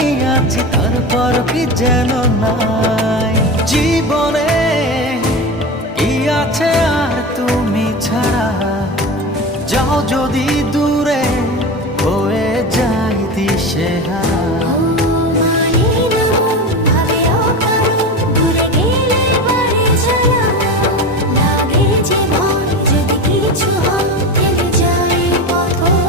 আছি তারপর কি যেন নাই। জীবনে কি আছে আর তুমি ছাড়া, যাও যদি দূরে হয়ে যাই দিশেহারা।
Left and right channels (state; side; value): normal; both; correlation 0.25